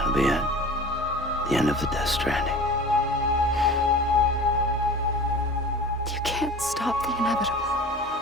be it. The end of the Death Stranding. can't stop the inevitable.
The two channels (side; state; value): both; normal; correlation 0.38